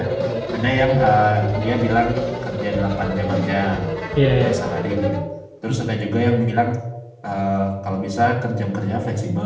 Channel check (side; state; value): both; identical; correlation 1.00